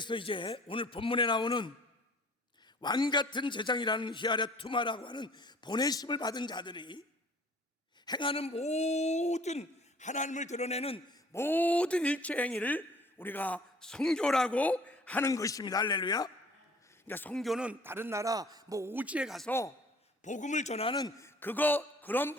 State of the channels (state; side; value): normal; both; correlation 0.52